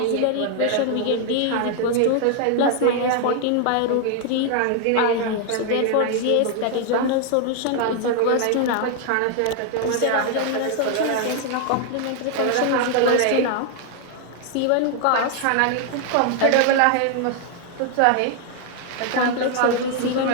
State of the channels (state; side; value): different; both; correlation 0.00